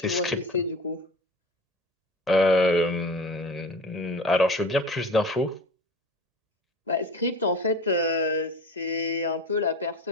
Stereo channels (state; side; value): normal; both; correlation 0.35